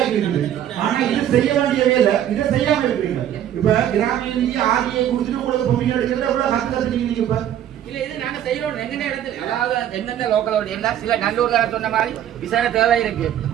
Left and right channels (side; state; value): left; quieter; 10.9 dB